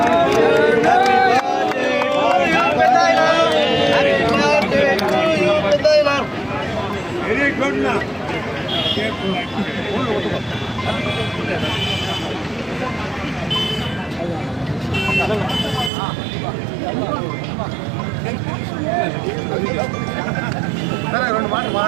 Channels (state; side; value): drops out; left; at 15.9 s